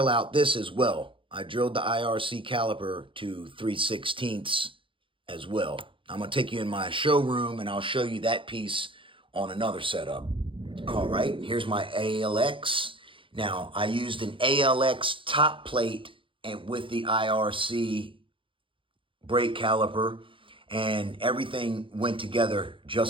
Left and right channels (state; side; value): late; left; 0.25 ms